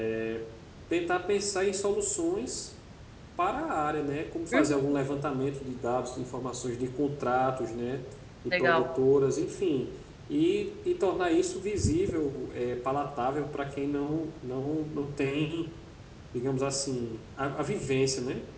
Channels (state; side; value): identical; both; correlation 1.00